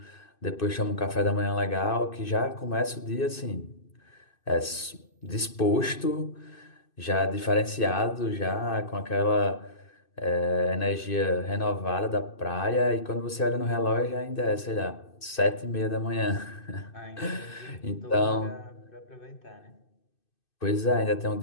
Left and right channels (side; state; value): right; late; 2.6 ms